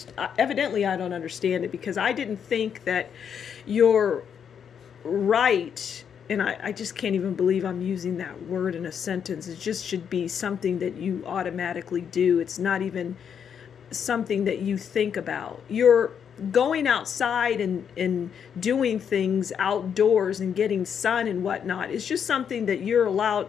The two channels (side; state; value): right; quieter; 7.8 dB